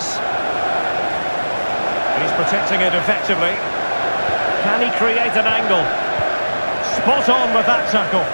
He's protecting it effectively. Can he create an angle? Spot on with that tackle.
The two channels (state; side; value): inverted; both; correlation -1.00